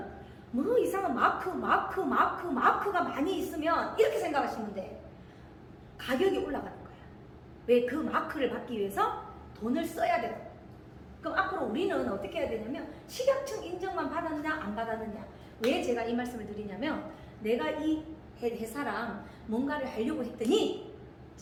뭐 이상한 마크가 많이 있으면 이렇게 생각하시면 돼. 가격이 올라가는 거야. 왜? 그 마크를 받기 위해서 돈을 써야 돼요. 그럼 앞으로 우리는 어떻게 해야 되냐면 식약청 인정만 받았냐 안 받았느냐. 왜 제가 이 말씀을 드리냐면 내가 이 회사랑 뭔가를 하려고 했더니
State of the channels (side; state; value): both; identical; correlation 1.00